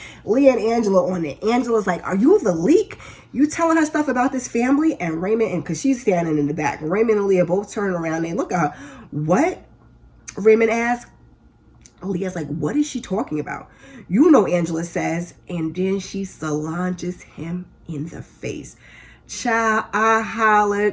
Leah and Angela on it. Angela's like, are you the leak? You telling her stuff about this family? And Raymond, and because she's standing in the back, Raymond and Leah both turn around and look at her. What? Raymond asks. Leah's like, what is she talking about? Angela says, and then she solanges him in the face. Child, I hollered.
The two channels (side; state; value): both; identical; correlation 1.00